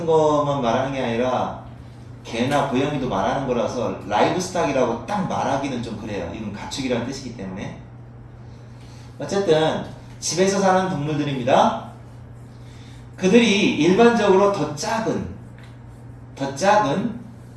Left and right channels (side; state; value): both; identical; correlation 1.00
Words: 것만 말하는 게 아니라 개나 고양이도 말하는 거라서 라이브 스탁이라고 딱 말하기는 좀 그래요. 이건 가축이라는 뜻이기 때문에. 어쨌든 집에서 사는 동물들입니다. 그들이 일반적으로 더 작은